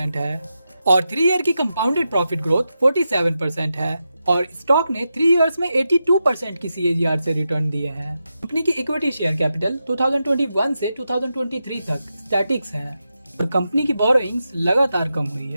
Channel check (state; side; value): inverted; both; correlation -0.88